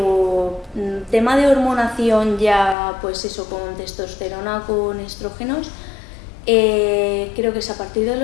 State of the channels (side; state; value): right; drops out; at 2.8 s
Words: tema de hormonación ya, pues eso, con testosterona, con estrógenos, creo que es a partir de